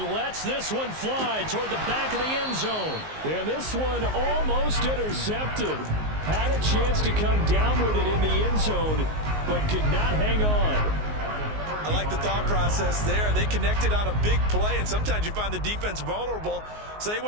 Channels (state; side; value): late; left; 19 ms